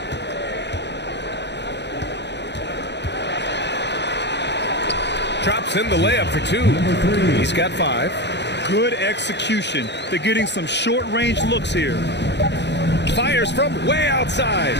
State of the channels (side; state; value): right; late; 0.50 ms